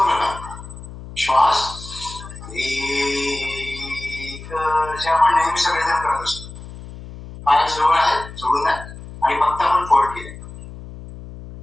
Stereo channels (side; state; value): left; noise; hum, 14 dB below the sound